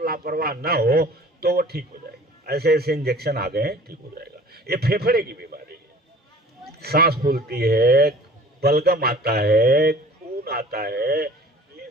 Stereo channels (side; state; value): both; normal; correlation 0.47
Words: लापरवाह ना हो, तो वो ठीक हो जाएगा। ऐसे ऐसे इंजेक्शन आ गए हैं, ठीक हो जाएगा। ये फेफड़े की बीमारी है, सांस फूलती है, बलगम आता है, खून आता है, ये